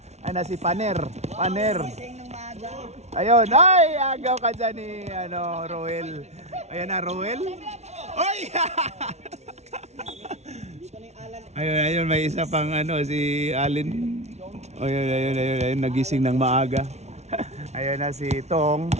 Ay na si Paner. Ayun. Ay, agaw ka dyan ni Roel. Ayan na, Roel. Uy! Ayun, may isa pang ano, si Alin. Ayun, nagising ng maaga. Ayun na si Tong.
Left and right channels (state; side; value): late; left; 0.32 ms